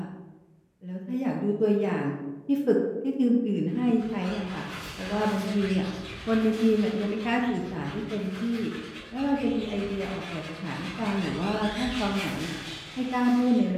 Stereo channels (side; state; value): both; identical; correlation 1.00